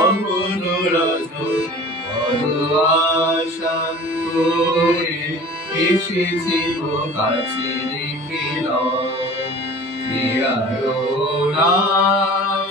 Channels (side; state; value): both; normal; correlation 0.42